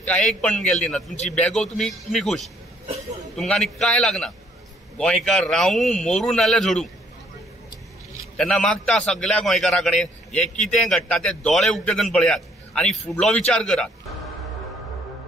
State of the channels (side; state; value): both; normal; correlation 0.64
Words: कांय पण गेल्ली ना. तुमची बॅगो तुमी खूश, तुमकां आनी कांय लागना. गोंयकार रावूं मरूं नाल्यार झोडूं. तेन्ना मागता सगळ्या गोंयकारा कडेन हे कितें घडटा ते दोळे उक्ते करून पळयात आनी फुडलो विचार करात.